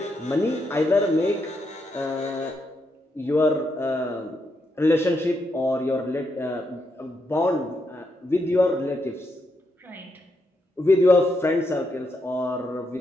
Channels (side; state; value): both; normal; correlation 0.80